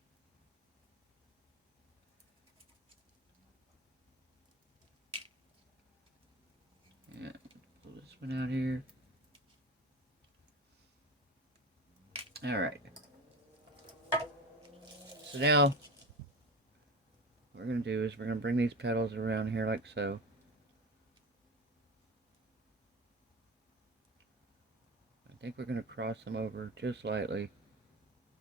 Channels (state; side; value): normal; both; correlation 0.28